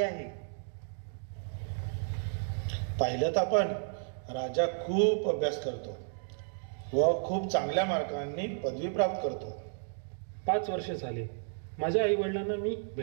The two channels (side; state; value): left; silent; digital silence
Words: आहे. पाहिलं तर आपण राजा खूप अभ्यास करतो व खूप चांगल्या मार्कांनी पदवी प्राप्त करतो. 5 वर्ष झाले माझ्या आई वडिलांना मी